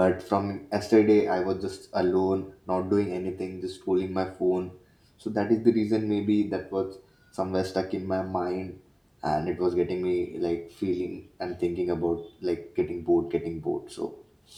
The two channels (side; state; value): both; identical; correlation 1.00